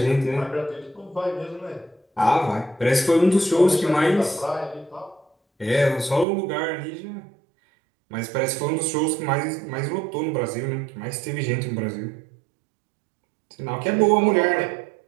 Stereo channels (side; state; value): left; drops out; at 6.2 s